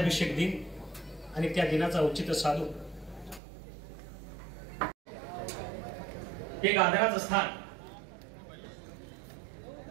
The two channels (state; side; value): drops out; left; at 3.4 s